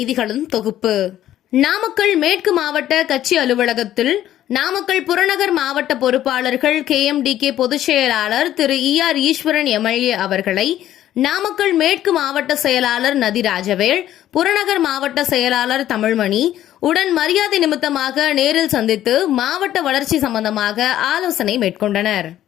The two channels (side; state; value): right; quieter; 12.5 dB